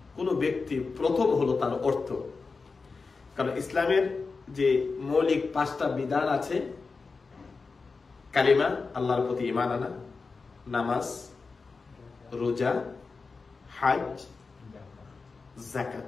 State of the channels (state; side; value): quieter; right; 4.4 dB